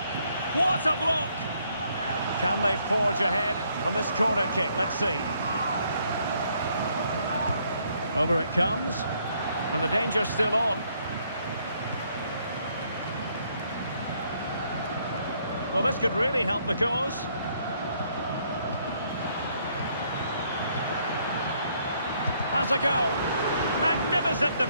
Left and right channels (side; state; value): both; inverted; correlation -0.69